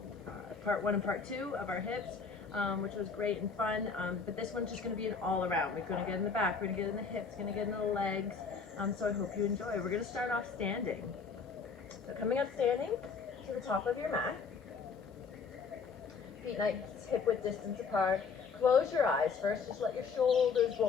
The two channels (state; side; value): quieter; right; 5.3 dB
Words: part one and part two of our hips, which was great and fun. But this one's just going to be an all-around. We're going to get in the back, we're going to get in the hips, going to get in the legs. So I hope you enjoy. We're going to start off standing. So coming up standing to the top of your mat. Feet nice hip width distance apart. Close your eyes first, just let your shoulders